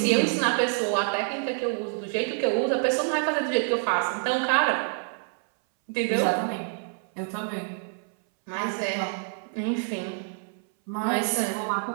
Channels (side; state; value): left; silent; 59 dB below the other